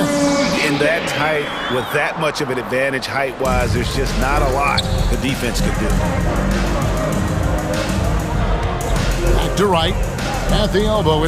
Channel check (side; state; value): both; identical; correlation 1.00